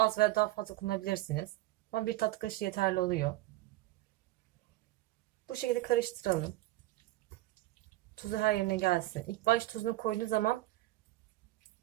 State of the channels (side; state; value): left; quieter; 17.7 dB